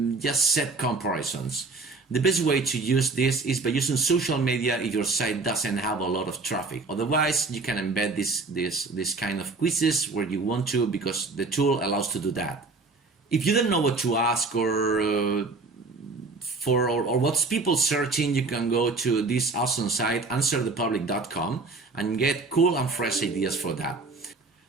just set comparisons. The best way to use this is by using social media if your site doesn't have a lot of traffic. Otherwise, you can embed this kind of quizzes where you want to, because the tool allows to do that. If you don't know what to ask or what's people searching, you can go to this awesome site, answerthepublic.com, and get cool and fresh ideas for that.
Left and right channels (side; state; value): left; quieter; 3.8 dB